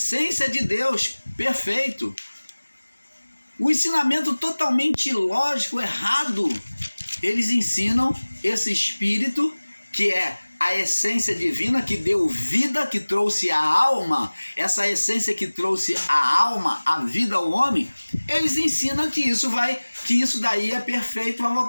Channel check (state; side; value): inverted; both; correlation -1.00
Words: de Deus, perfeito. O ensinamento totalmente ilógico, errado. Eles ensinam esse espírito que é a essência divina, que deu vida, que trouxe a alma, essa essência que trouxe a alma, a vida ao homem. Eles ensinam que isso daí é perfeito, vai